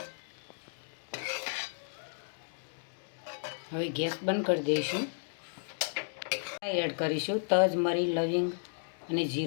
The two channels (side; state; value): right; silent; digital silence